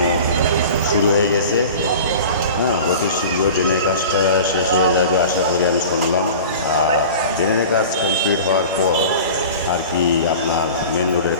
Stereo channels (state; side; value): inverted; both; correlation -0.38